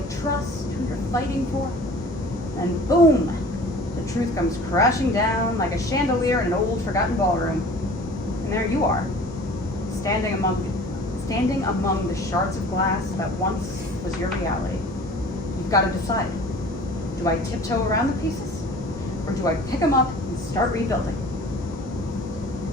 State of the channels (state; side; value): normal; both; correlation 0.45